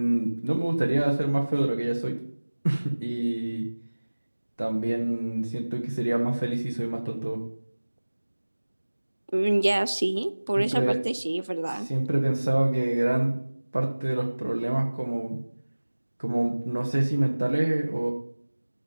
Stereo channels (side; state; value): both; inverted; correlation -1.00